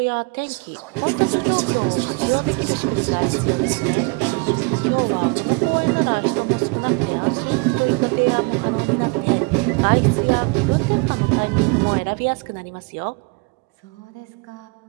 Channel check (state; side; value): quieter; left; 30.0 dB